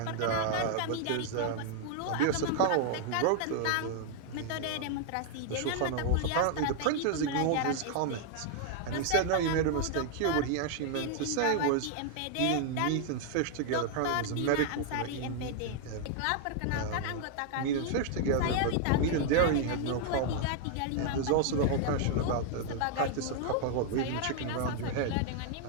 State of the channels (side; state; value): both; different; correlation 0.00